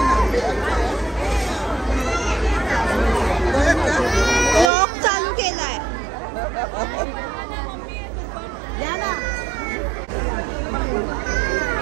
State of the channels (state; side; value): drops out; left; at 4.7 s